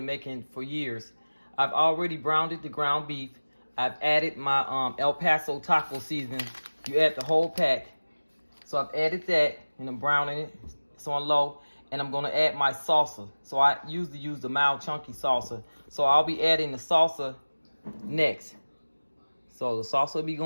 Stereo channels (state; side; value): inverted; both; correlation -1.00